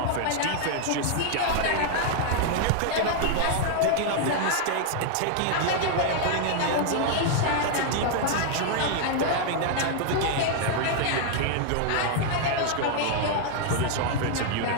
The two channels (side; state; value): both; different; correlation 0.00